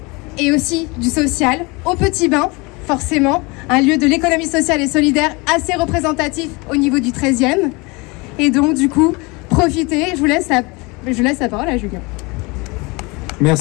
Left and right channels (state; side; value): quieter; right; 26.6 dB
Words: et aussi du social au Petit Bain, forcément, un lieu de l'économie sociale et solidaire assez représentatif au niveau du 13e. Et donc du coup, profitez, je laisse la parole à Julien.